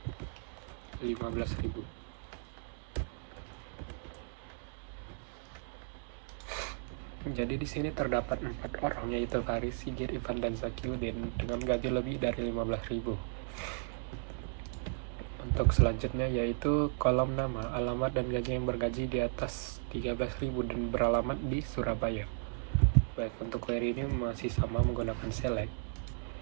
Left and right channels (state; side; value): silent; left; digital silence